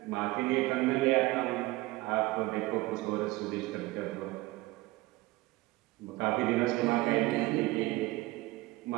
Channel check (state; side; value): quieter; left; 19.8 dB